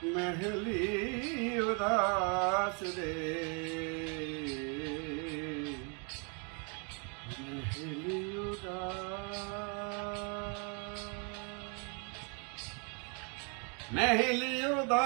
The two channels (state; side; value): quieter; left; 36.2 dB